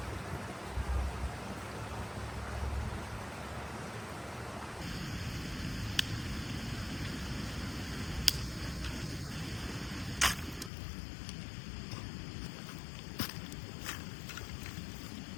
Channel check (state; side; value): drops out; right; at 10.7 s